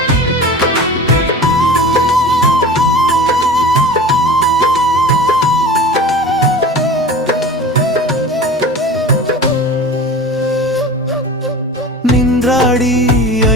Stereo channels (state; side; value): normal; both; correlation 0.36